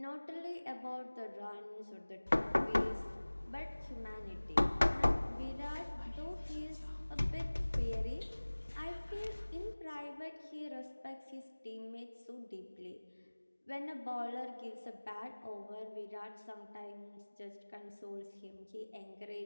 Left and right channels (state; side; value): inverted; both; correlation -1.00